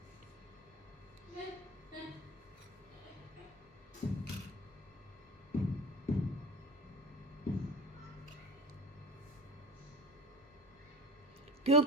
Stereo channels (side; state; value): both; normal; correlation 0.34